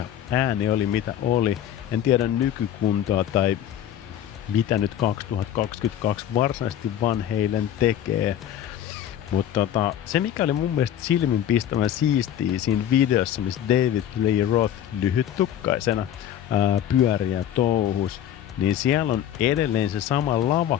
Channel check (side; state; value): right; quieter; 10.6 dB